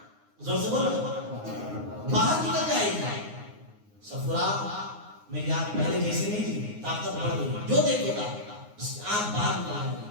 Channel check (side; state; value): left; late; 9.6 ms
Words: زور سے بولو باہر نکل جائے گی. صفرہ میری آنکھ پہلے جیسی نہیں تھی، طاقت بڑھ گئی، جو دیکھے گا اس کی آنکھ باہر نکل جائے